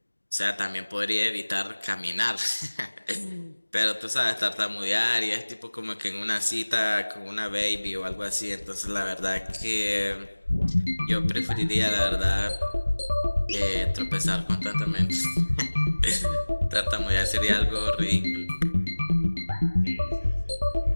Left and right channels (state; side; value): inverted; both; correlation -1.00